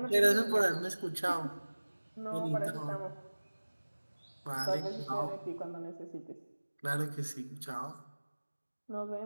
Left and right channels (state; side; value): inverted; both; correlation -1.00